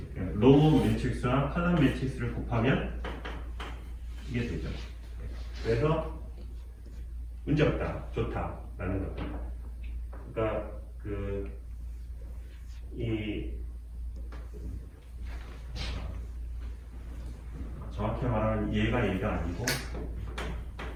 로우 매트릭스와 칼럼 매트릭스를 곱하면 이게 되죠. 그래서 문제 없다, 좋다라는 겁니다. 그러니까 이 정확히 말하면 얘가 아니고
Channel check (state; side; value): identical; both; correlation 1.00